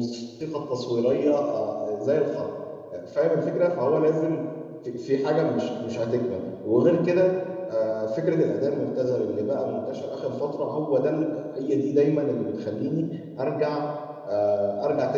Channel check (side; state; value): both; identical; correlation 1.00